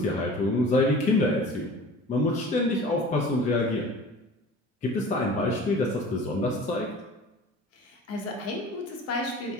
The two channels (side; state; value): both; normal; correlation 0.42